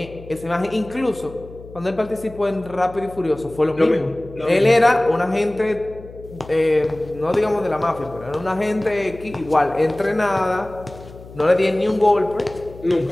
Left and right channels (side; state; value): left; noise; hum, 18 dB below the sound